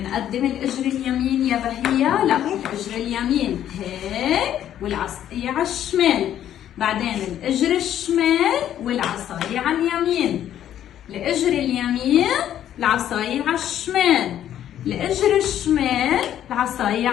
الاجر اليمين يا بهية، لا الاجر اليمين هيك والعصايه على الشمال، بعدين الاجر الشمال والعصايه على اليمين، الاجر اليمين العصايه على الشمال، الاجر الشمال العصايه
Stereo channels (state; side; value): quieter; right; 11.0 dB